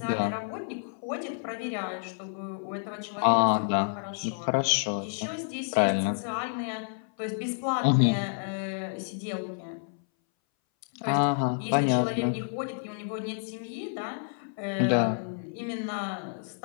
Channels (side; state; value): right; silent; 58 dB below the other